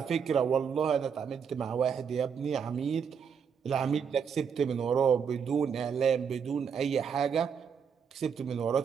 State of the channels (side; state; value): left; quieter; 6.8 dB